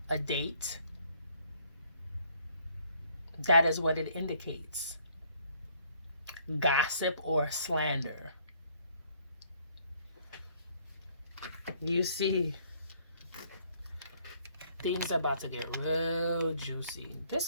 a date. That is what it indicates. Gossip or slander. You see, things are about to get real juicy.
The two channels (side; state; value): both; inverted; correlation -0.64